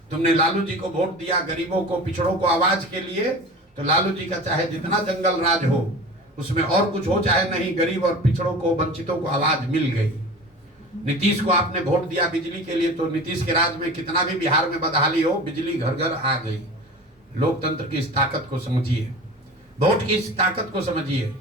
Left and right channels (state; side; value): normal; both; correlation 0.36